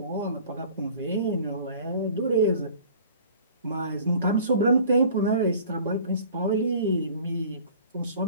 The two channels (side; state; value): both; inverted; correlation -0.47